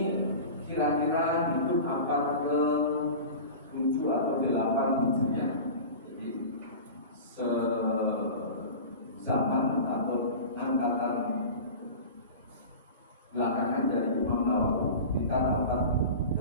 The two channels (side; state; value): both; inverted; correlation -0.33